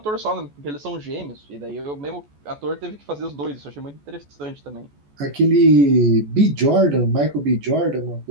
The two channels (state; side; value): late; left; 14 ms